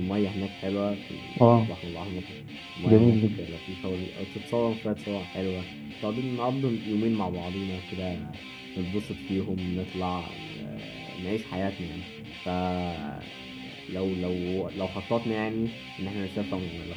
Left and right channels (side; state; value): both; identical; correlation 1.00